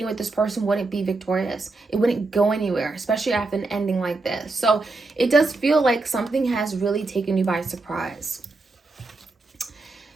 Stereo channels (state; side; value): quieter; left; 3.5 dB